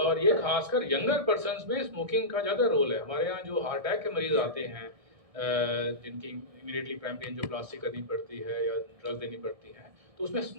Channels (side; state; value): left; late; 1.6 ms